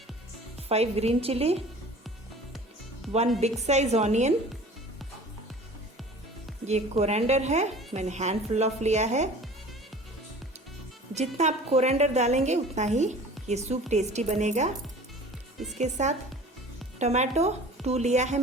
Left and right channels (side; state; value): both; normal; correlation 0.43